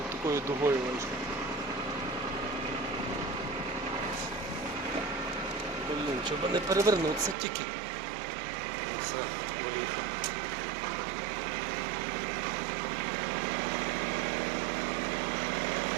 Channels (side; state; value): left; drops out; at 7.4 s